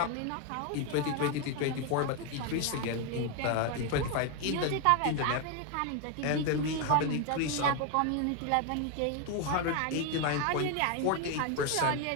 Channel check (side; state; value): both; different; correlation 0.01